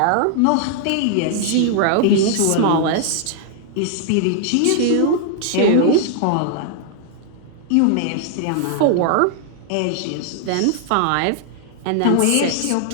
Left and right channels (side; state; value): both; different; correlation -0.01